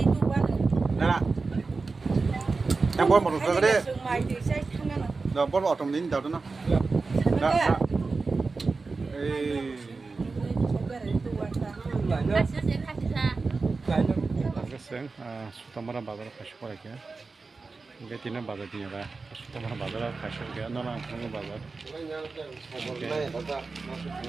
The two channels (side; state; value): left; quieter; 4.1 dB